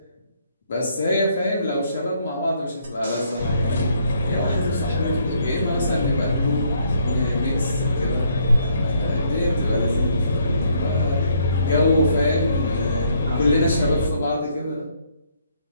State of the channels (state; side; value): inverted; both; correlation -0.69